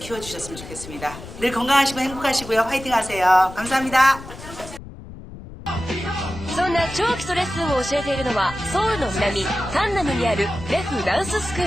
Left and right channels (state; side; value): noise; left; rumble, 14 dB below the sound